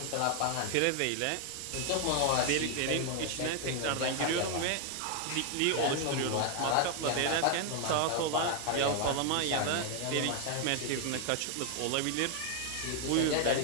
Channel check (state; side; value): different; both; correlation 0.00